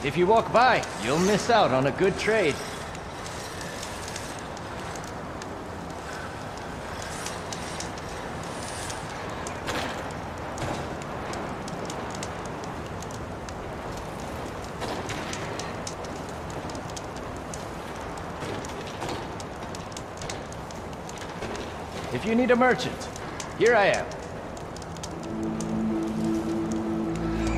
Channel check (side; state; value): both; identical; correlation 1.00